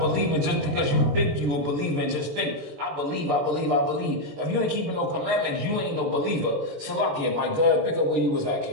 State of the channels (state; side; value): late; left; 21 ms